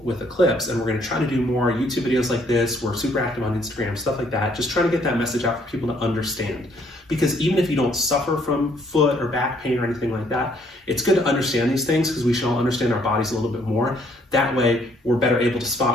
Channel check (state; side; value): normal; both; correlation 0.66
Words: with Eclipse, and we're going to try to do more YouTube videos like this. We're super active on Instagram, stuff like that, just trying to get that message out for people to understand. because even if you don't suffer from foot or back pain or anything like that, it's good to understand these things because we should all understand our bodies a little bit more. That way, we're better able to